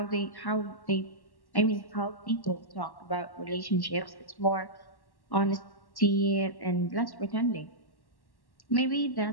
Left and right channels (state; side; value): late; right; 1.1 ms